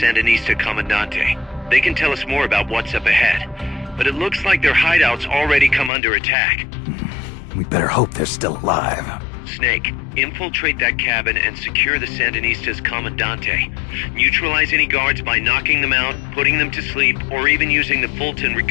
Comandante. They can tell us more about what's up ahead. But it looks like their hideout's already come under attack. We better hope they're still alive. Snake, infiltrate that cabin and secure the Sandinistas Comandante. Neutralize any guards by knocking them out, putting them to sleep, or even using the Fulton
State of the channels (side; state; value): right; drops out; at 5.9 s